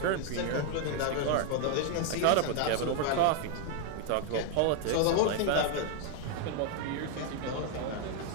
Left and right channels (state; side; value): different; both; correlation 0.00